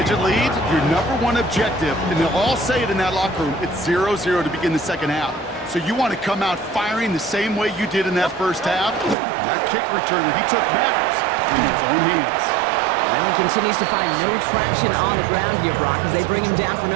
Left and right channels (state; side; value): drops out; left; at 9.2 s